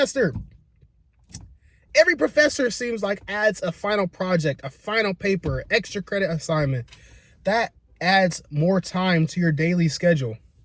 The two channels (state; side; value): identical; both; correlation 1.00